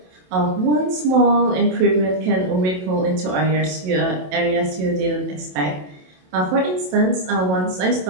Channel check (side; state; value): left; late; 27 ms